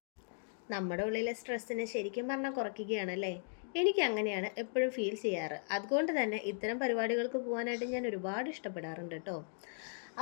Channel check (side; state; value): right; silent; digital silence